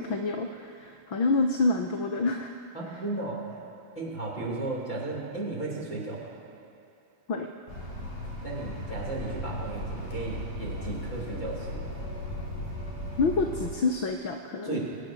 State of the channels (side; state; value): right; late; 6.1 ms